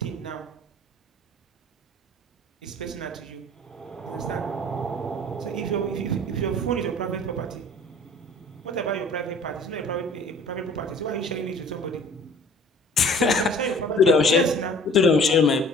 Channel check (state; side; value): normal; both; correlation 0.49